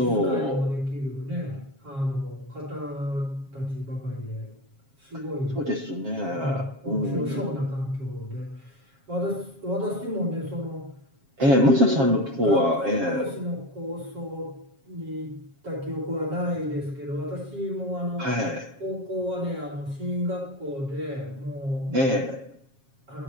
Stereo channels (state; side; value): late; left; 7.4 ms